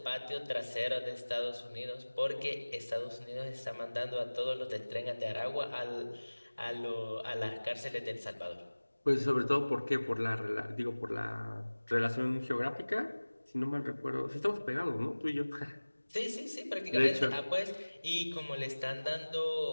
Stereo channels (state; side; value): inverted; both; correlation -1.00